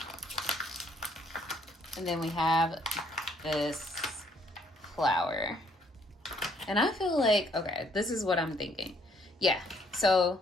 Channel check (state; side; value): normal; both; correlation 0.66